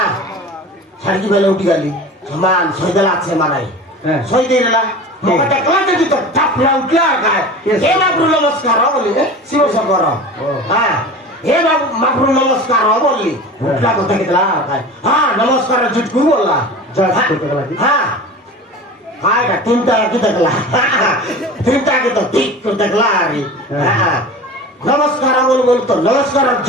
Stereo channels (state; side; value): normal; both; correlation 0.35